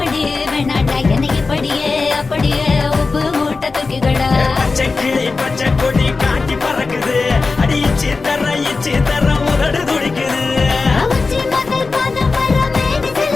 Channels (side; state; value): right; quieter; 4.1 dB